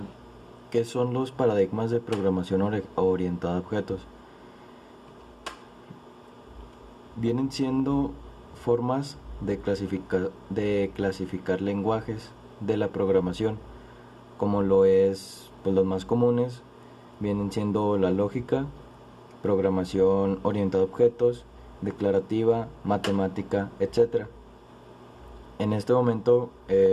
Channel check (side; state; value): both; identical; correlation 1.00